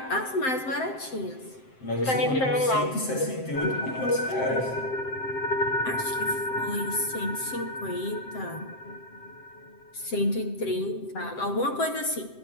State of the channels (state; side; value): late; right; 7.7 ms